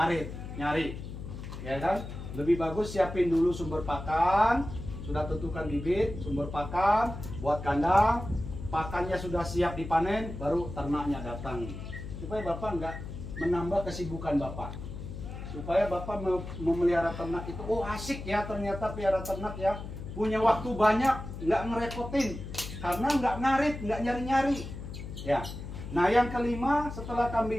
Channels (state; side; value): noise; left; hum, 9 dB below the sound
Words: nyari ya kan. Lebih bagus siapin dulu sumber pakan, sudah tentukan bibit sumber pakan buat kandang, pakannya sudah siap dipanen, baru ternaknya datang, supaya Bapak nggak menambah kesibukan Bapak. Supaya Bapak memelihara ternak itu, oh asik ya ternyata pelihara ternak ya, punya waktu banyak, nggak ngerepotin, karena nggak ngarit, nggak nyari-nyari ya. Nah yang kelima, setelah